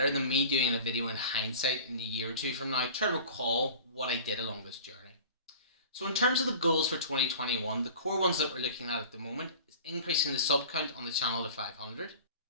than me doing a video in hindsight in a year or two from now, try to recall what I did along this journey. So in terms of the goals for 2021, the core ones that we're looking at the moment is increasing the sub count on the channel to 500,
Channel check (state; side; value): inverted; both; correlation -0.39